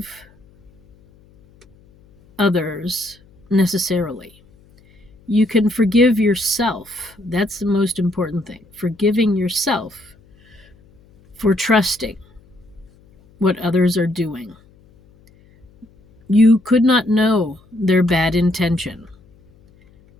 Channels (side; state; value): left; noise; hum, 29 dB below the sound